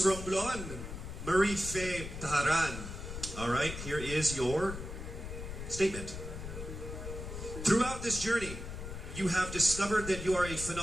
Romblon, Marie Faye Taharan. All right, here is your statement. Throughout this journey, you have discovered that you are a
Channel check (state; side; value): noise; left; rumble, 8 dB below the sound